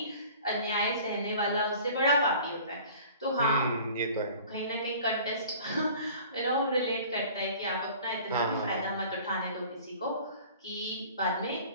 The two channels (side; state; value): both; inverted; correlation -0.46